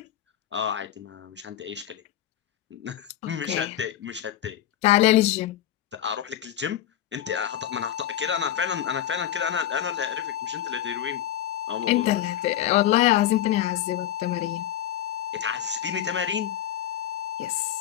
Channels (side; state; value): right; quieter; 11.5 dB